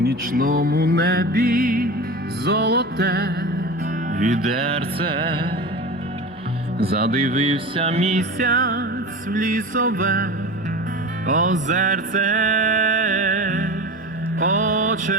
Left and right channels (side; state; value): both; normal; correlation 0.30